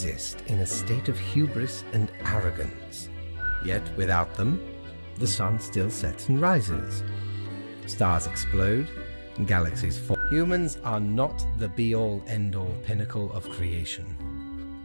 in a state of hubris and arrogance. Yet without them, the sun still sets and rises. Stars explode, galaxies fall. Humans are not the be-all, end-all pinnacle of creation.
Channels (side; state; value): both; inverted; correlation -1.00